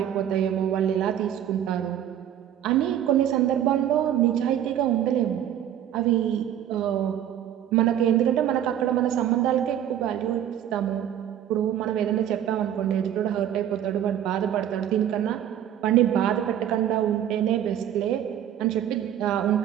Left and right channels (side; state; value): left; quieter; 10.6 dB